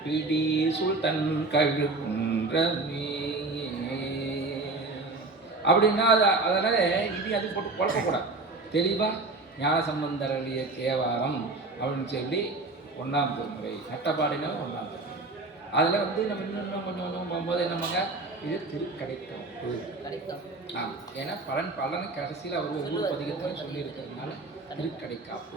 பிடி சுல்தன் கழுகுன்றமே அப்படின்னா அதனால அது போட்டு குழப்பக்கூடாது. தெளிவாக ஞான சம்பந்தர் அருளிய தேவாரம் அப்படின்னு சொல்லி 1ஆம் திருமுறை, நட்டபாடினா 1ஆம் திருமுறை. அதில் நம்ம இன்னும் கொஞ்சம் போகும்போது என்னமாங்க, இது திருக்கடைக்காப்பு. ஆமாம், ஏன்னா பலனை கடைசியில் அவர் ஒவ்வொரு பதிகத்தையும் சொல்லியிருக்கிறதுனால திருக்கடைக்காப்பு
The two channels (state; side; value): quieter; left; 3.3 dB